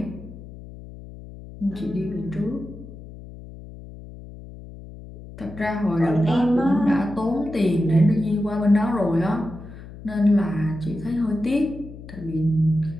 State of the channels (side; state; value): left; noise; hum, 15 dB below the sound